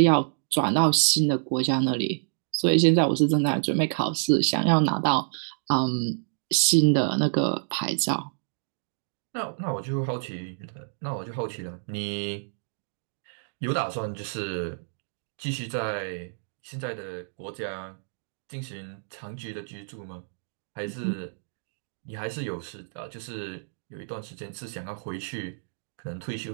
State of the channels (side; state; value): left; silent; digital silence